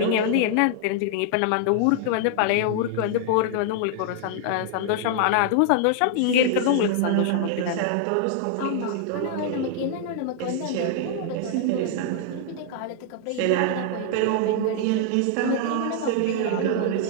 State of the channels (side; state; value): both; different; correlation -0.01